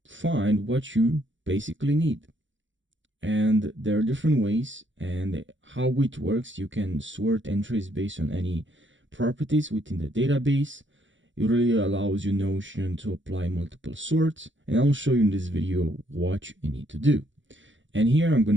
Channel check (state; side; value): late; left; 0.55 ms